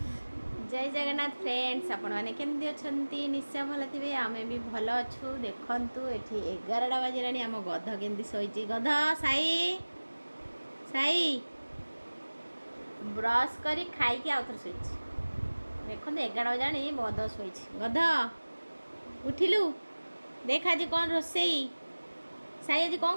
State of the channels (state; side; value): inverted; both; correlation -1.00